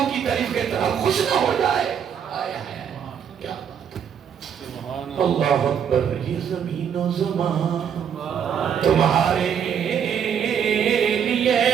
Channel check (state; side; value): quieter; left; 8.1 dB